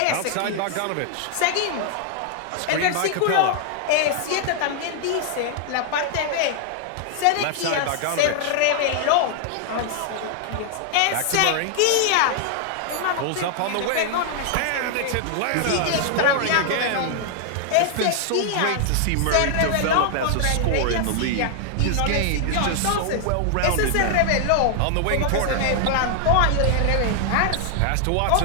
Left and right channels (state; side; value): different; both; correlation 0.00